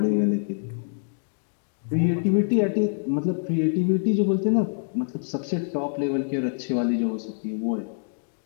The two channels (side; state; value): right; silent; digital silence